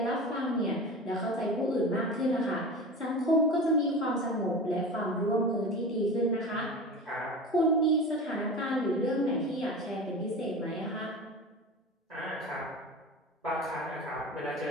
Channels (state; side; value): normal; both; correlation 0.31